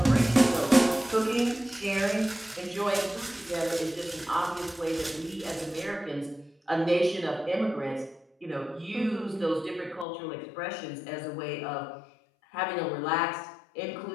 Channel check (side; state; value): right; drops out; at 10.1 s